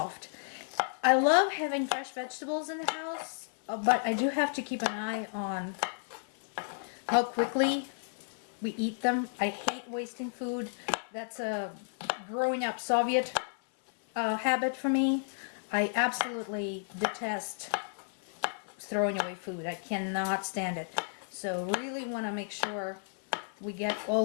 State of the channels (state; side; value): silent; right; 56 dB below the other